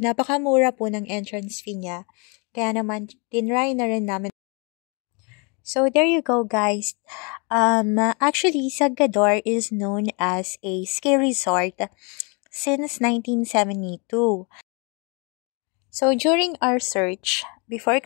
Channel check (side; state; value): right; quieter; 32.9 dB